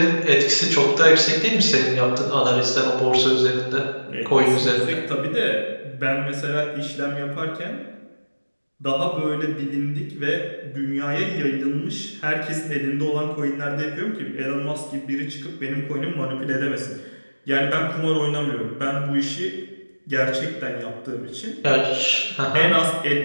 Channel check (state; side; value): inverted; both; correlation -1.00